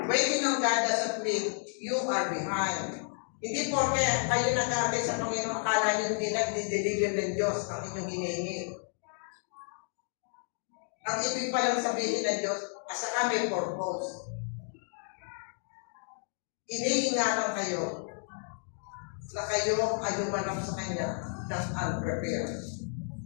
Waiting on God doesn't mean you are behind. Hindi porke kayo nag-aantay sa Panginoon, akala nyo hindi nag-deliver ng Diyos ang inyong hinihingi. Ang ibig palang sabihin ng Diyos, asa kami purpose. Iniingatan kayo na kayo ay humanap sa Kanya ng unprepared,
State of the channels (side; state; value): right; silent; 57 dB below the other